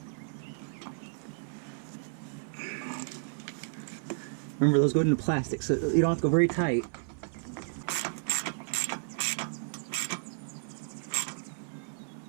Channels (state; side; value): silent; left; 56 dB below the other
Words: Remember, those go into plastic, so you don't have to go very tight.